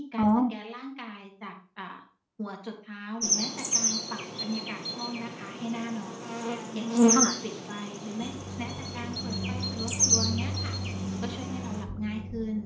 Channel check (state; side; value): identical; both; correlation 1.00